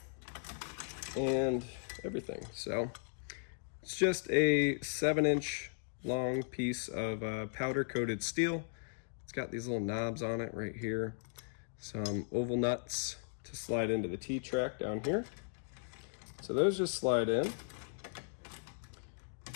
and everything. So it's just a 7-inch long piece of powder coated steel. It's got these little knobs on it right here, some oval nuts to slide into the T-track down here. So those just slide in,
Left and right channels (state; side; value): silent; right; digital silence